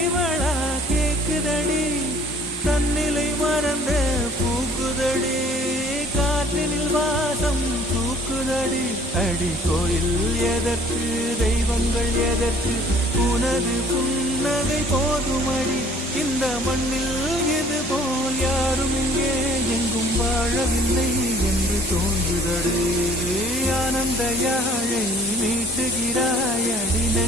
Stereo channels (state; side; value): normal; both; correlation 0.54